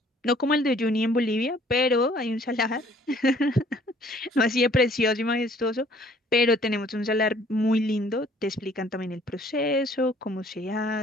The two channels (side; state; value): both; normal; correlation 0.58